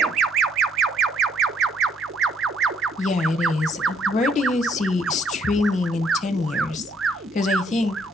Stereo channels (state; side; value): normal; both; correlation 0.67